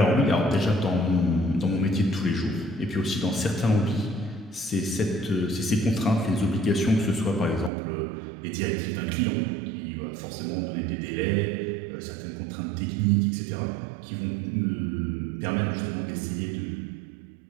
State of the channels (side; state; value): left; drops out; at 7.7 s